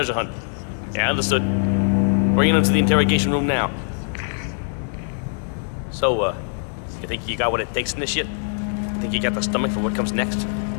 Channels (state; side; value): silent; right; 64 dB below the other